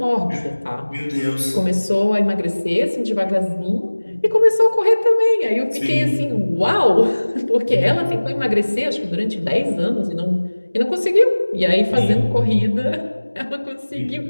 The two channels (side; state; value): both; inverted; correlation -1.00